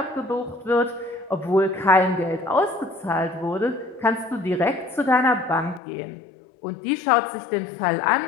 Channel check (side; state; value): right; drops out; at 5.8 s